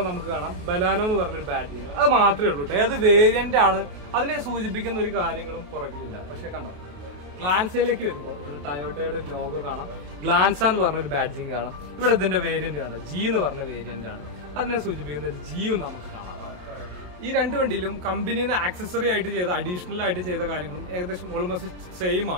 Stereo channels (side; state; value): left; late; 28 ms